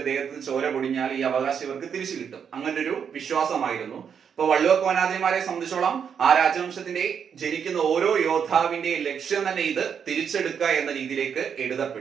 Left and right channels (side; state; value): left; quieter; 7.3 dB